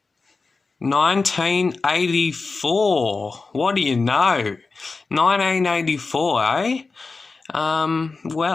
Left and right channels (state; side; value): quieter; right; 4.1 dB